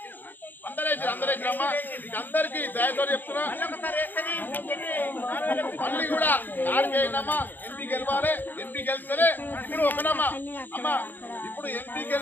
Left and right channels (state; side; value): late; right; 0.089 ms